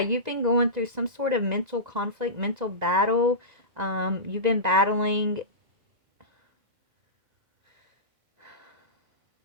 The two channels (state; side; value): late; left; 2.0 ms